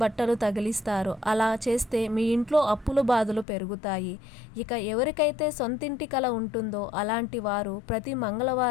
బట్టలు తగిలిస్తారు. అలా చేస్తే మీ ఇంట్లో అప్పుల బాధలు పెరుగుతాయి. ఇక ఎవరికైతే సొంతింటి కల ఉంటుందో అలాంటి వారు ప్రతి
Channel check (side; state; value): right; drops out; at 3.5 s